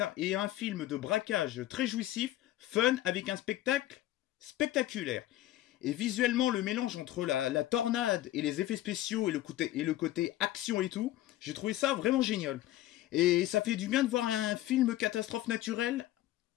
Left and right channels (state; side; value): quieter; right; 14.7 dB